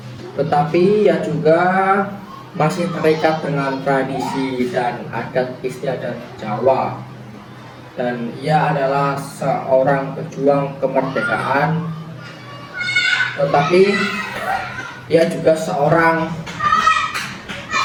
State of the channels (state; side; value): identical; both; correlation 1.00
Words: tetapi ia juga masih terikat dengan tradisi dan adat istiadat Jawa, dan ia adalah seorang pejuang kemerdekaan, tetapi ia juga seorang